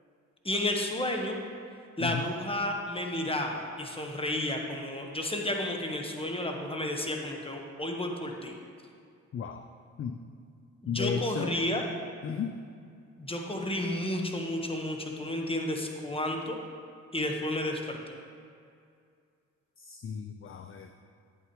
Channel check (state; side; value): normal; both; correlation 0.36